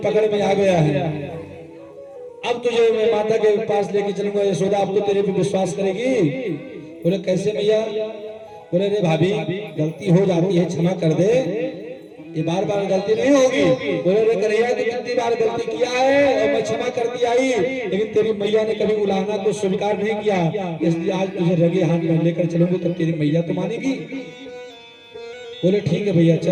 पकड़ में आ गया है, अब तुझे मैं माता के पास लेके चलूंगा। यशोदा अब तो तेरे पे विश्वास करेगी। बोले कैसे भैया? बोले रे भाभी गलती हो जाती है क्षमा कर दे, ये बार बार गलती नहीं होगी। बोले रे कन्हैया तू कितनी बार गलती किया है और मैं क्षमा करती आई, लेकिन तेरी मैया ने कभी उलाहना को स्वीकार नहीं किया, इसलिए आज तुझे रगे हाथ में लेकर चलूंगी तब तेरी मैया तो मानेगी। बोले ठीक है भैया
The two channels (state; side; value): identical; both; correlation 1.00